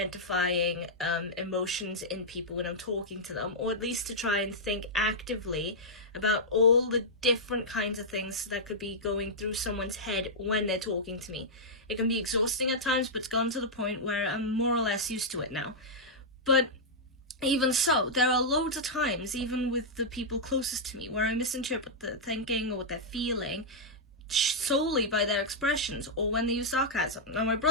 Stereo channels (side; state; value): both; normal; correlation -0.08